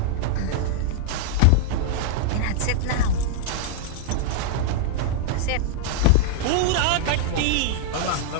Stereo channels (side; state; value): both; different; correlation -0.01